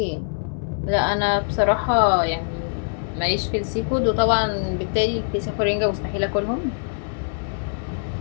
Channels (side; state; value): right; silent; 63 dB below the other